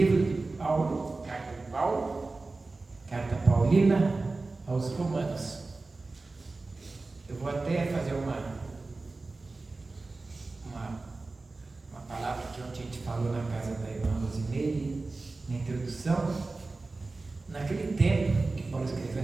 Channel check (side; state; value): left; quieter; 3.5 dB